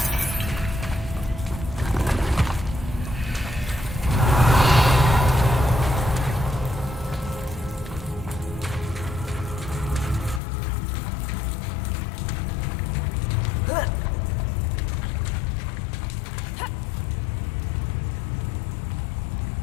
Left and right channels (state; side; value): drops out; right; at 10.4 s